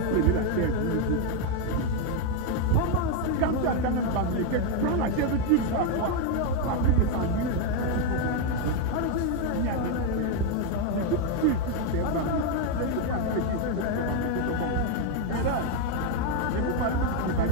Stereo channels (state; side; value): different; both; correlation 0.02